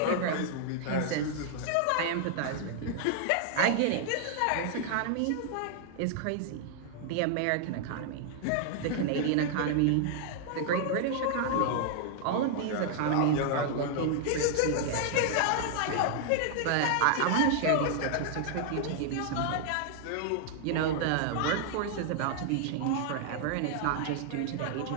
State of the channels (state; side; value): different; both; correlation -0.01